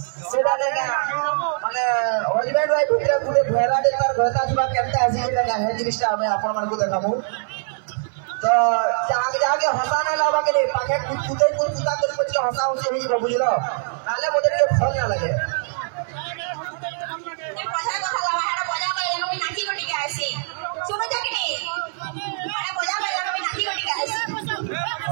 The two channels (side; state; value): left; silent; 58 dB below the other